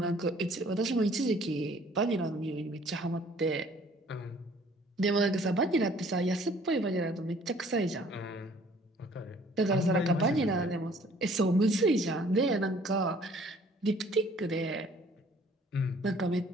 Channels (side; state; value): both; normal; correlation 0.56